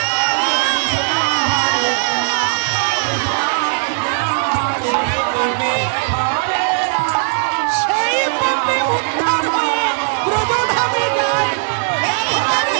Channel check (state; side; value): silent; left; digital silence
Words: সেই পাপে উদ্ধার হয়ে ব্রজধামে যায়।